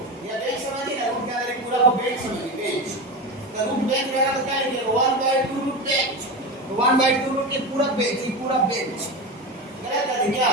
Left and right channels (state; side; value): normal; both; correlation 0.22